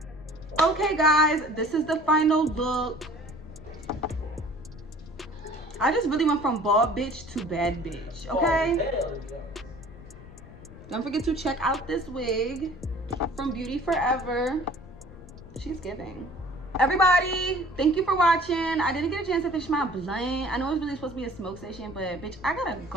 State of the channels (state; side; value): noise; left; rumble, 18 dB below the sound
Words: Okay guys, this is the final look. I just really went from bald bitch to bad bitch, okay? Don't forget to check out this wig from Beauty Forever. She's giving. Everybody, thank you for watching. I didn't get a chance to finish my blunt. I know it's really supposed to be a smoke session, but bitch, I gotta